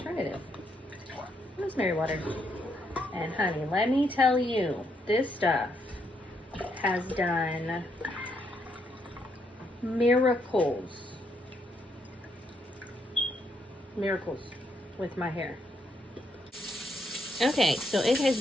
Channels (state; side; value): normal; both; correlation 0.76